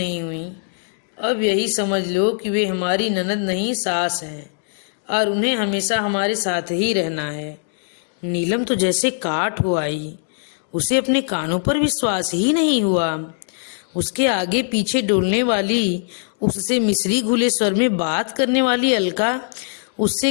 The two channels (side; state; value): right; silent; digital silence